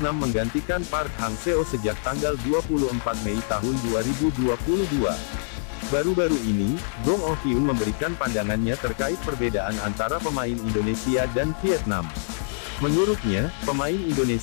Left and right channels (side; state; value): right; silent; 62 dB below the other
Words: menggantikan Park Hang-seo sejak tanggal 24 Mei tahun 2022. Baru-baru ini, Gong Oh-kyun memberikan pandangannya terkait perbedaan antara pemain Indonesia dan Vietnam. Menurutnya, pemain